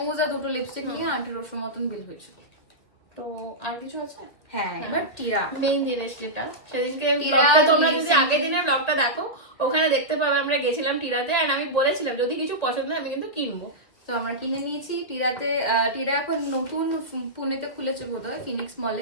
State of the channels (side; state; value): right; late; 2.3 ms